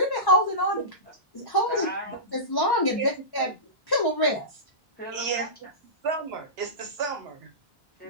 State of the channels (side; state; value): both; normal; correlation -0.19